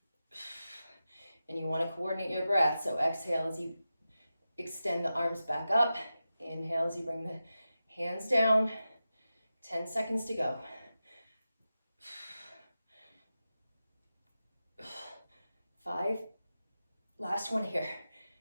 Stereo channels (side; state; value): both; inverted; correlation -0.92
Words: And you want to coordinate your breath. So exhale as you extend the arms back up. Inhale as you bring the hands down. 10 seconds to go. 5. Last one here.